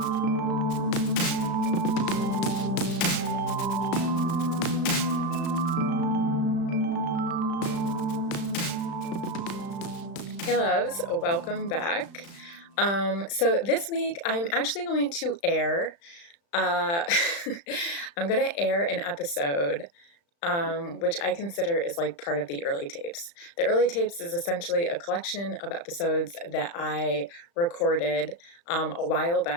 Hey loves, welcome back. So this week I'm actually going to air an episode, which I consider is like part of the early tapes. The early tapes is essentially a collection of episodes that I recorded a while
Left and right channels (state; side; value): late; right; 35 ms